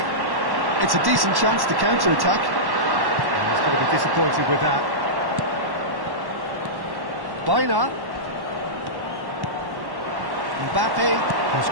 It's a decent chance to counter-attack. He's going to be disappointed with that. Bina. Mbappe has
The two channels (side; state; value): left; late; 1.1 ms